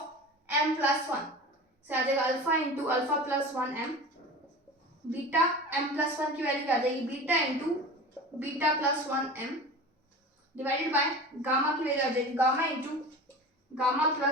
m plus 1, से आ जाएगा alpha into alpha plus 1m beta, m plus 1 की वैल्यू क्या आ जाएगी beta into beta plus 1m divided by gamma की वैल्यू आ जाएगी gamma into gamma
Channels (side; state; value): both; normal; correlation 0.34